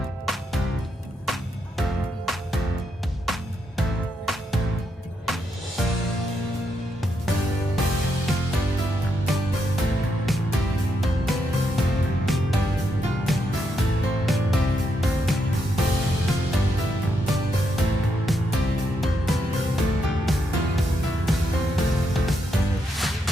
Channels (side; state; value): both; normal; correlation 0.80